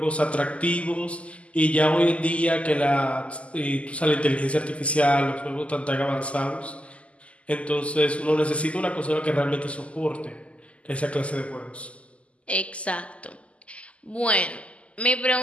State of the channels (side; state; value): right; late; 0.061 ms